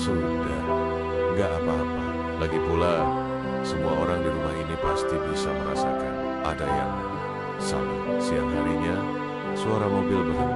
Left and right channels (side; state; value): both; identical; correlation 1.00